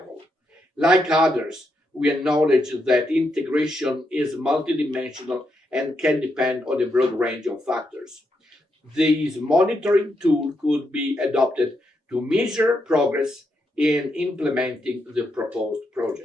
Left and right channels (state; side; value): normal; both; correlation 0.81